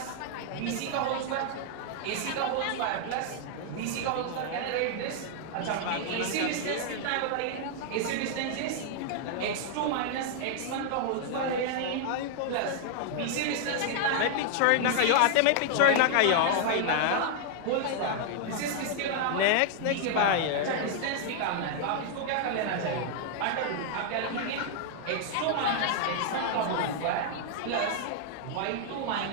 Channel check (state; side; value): different; both; correlation 0.00